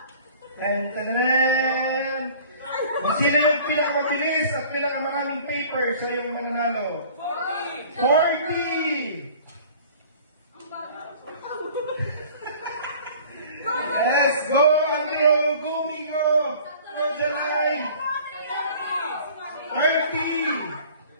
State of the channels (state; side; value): inverted; both; correlation -0.48